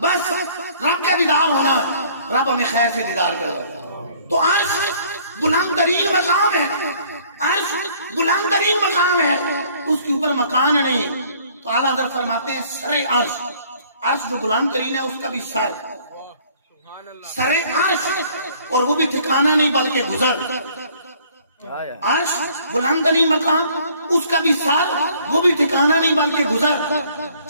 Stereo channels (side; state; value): both; inverted; correlation -0.58